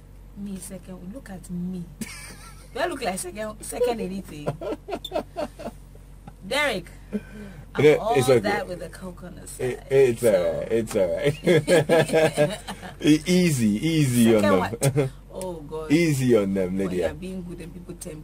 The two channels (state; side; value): identical; both; correlation 1.00